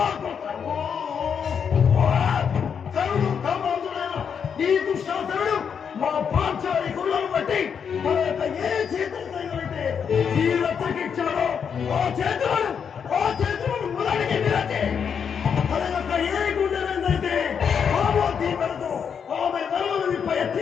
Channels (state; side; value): quieter; right; 7.1 dB